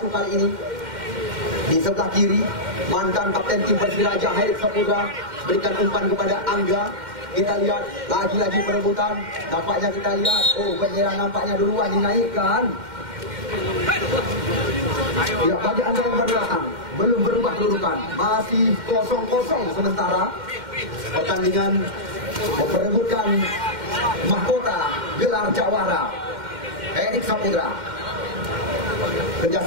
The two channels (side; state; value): left; late; 2.1 ms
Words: kali ini. Di sebelah kiri, mantan kapten tim Persiraja Herik Saputra berikan umpan kepada Angga. Kita lihat lagi-lagi perebutan. Nampaknya kita lihat, penyerang nampaknya duluan dinaikkan. Ya, bagi Anda yang berbelakang, belum berubah kedudukan, masih 0-0 sementara. Pertandingan memperebutkan mahkota gelar jawara Herik Saputra.